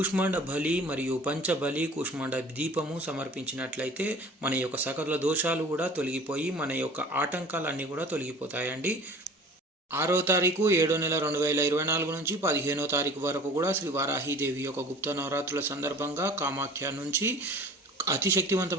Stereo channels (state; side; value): normal; both; correlation 0.45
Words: బలి మరియు పంచబలి కూష్మాండ దీపము సమర్పించినట్లయితే మన యొక్క సకల దోషాలు కూడా తొలగిపోయి మన యొక్క ఆటంకాలన్నీ కూడా తొలగిపోతాయండి. 6వ తారీఖు 7వ నెల 2024 నుంచి 15వ తారీఖు వరకు కూడా శ్రీ వారాహీదేవి యొక్క గుప్త నవరాత్రుల సందర్భంగా కామాఖ్య నుంచి అతి